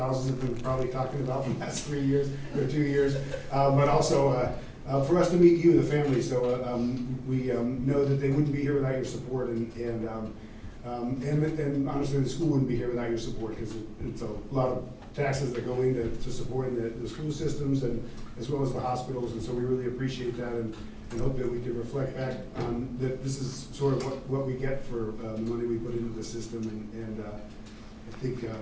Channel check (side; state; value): both; identical; correlation 1.00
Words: have been probably talking about in the last 3 years or 2 years, but also for us to meet you, the family. So we know that they wouldn't be here without your support, and honestly, the school wouldn't be here without your support, because it's a lot of taxes that go into supporting the school systems and as well as the hospitals, and so we really appreciate that and hope that we can reflect back on that this is sort of what we get for the money we put into the system, and I think